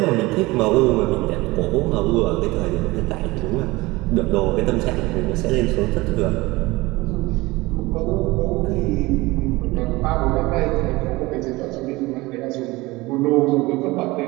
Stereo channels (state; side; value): quieter; left; 21.3 dB